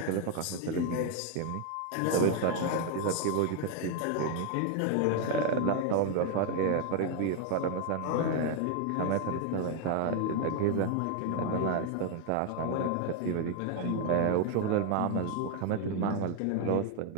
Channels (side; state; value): both; different; correlation 0.01